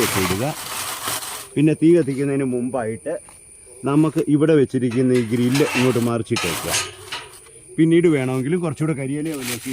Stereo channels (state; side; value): identical; both; correlation 1.00